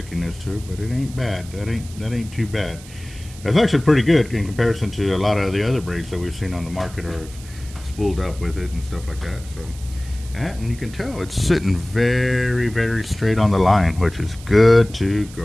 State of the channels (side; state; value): right; noise; hiss, 19 dB below the sound